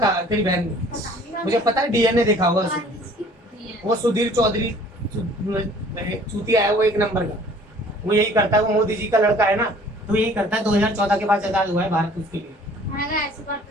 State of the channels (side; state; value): both; normal; correlation 0.53